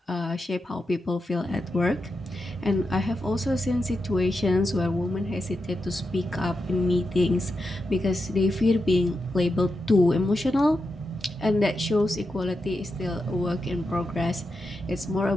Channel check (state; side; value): normal; both; correlation 0.87